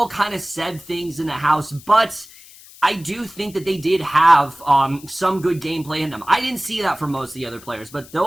kind of said things in the house, but I do think that they did have some good gameplay in them. I didn't see that from most of the other players, but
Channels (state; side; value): noise; left; hiss, 21 dB below the sound